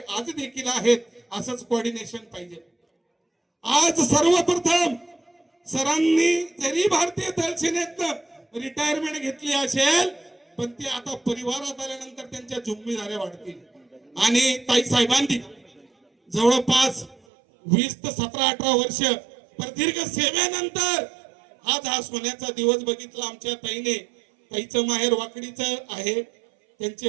आज देखील आहेत. असंच कोऑर्डिनेशन पाहिजे. आज सर्वप्रथम सरांनी जरी भारतीय थल सेनेतनं रिटायरमेंट घेतली असेल पण ते आता परिवारात आल्यानंतर त्यांच्या जिम्मेदाऱ्या वाढतील. आणि ताई साहेबांनी जवळपास 20 ते 17-18 वर्ष प्रदीर्घ सेवेनंतर आज हा सोन्याचा दिवस बघितला. आमच्या ताईने, ताईचं माहेर वाकडीचं आहे,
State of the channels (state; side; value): drops out; left; at 17.2 s